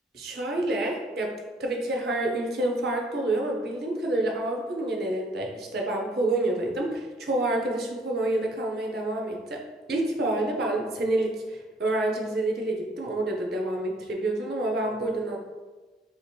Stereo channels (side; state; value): both; normal; correlation 0.61